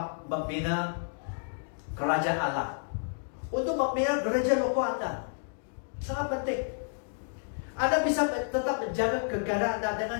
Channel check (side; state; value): right; silent; digital silence